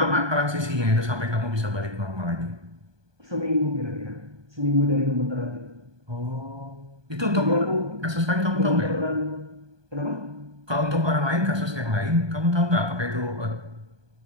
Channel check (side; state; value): left; late; 1.2 ms